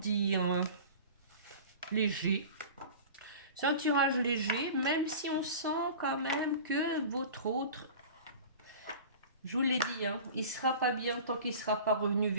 léger. C'est un tirage léger, même si on sent quand même que votre autre, je vous l'ai dit, hein, il ne sera pas bien tant qu'il ne sera pas revenu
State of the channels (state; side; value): inverted; both; correlation -0.38